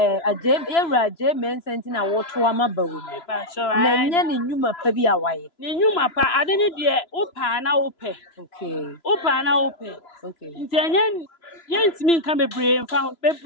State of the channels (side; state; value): right; late; 3.0 ms